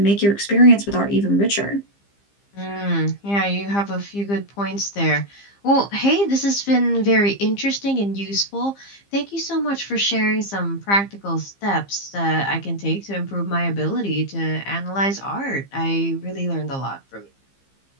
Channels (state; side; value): late; right; 15 ms